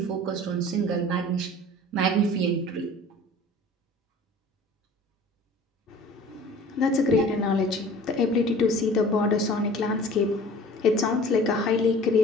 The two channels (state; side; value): normal; both; correlation 0.45